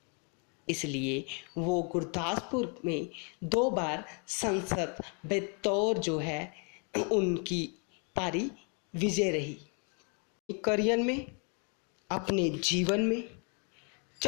इसलिए वो गुरदासपुर में 2 बार संसद बतौर जो है उनकी पारी विजय रही। करियर में, अपने जीवन में,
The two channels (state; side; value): quieter; right; 37.4 dB